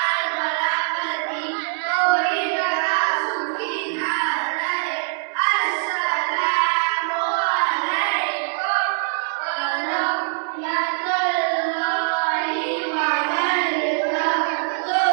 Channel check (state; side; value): silent; left; digital silence